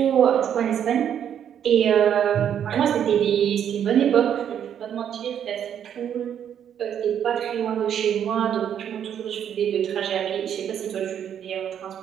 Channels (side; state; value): left; quieter; 9.2 dB